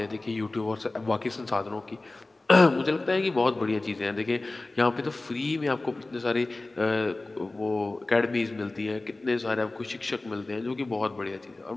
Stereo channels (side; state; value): right; quieter; 3.0 dB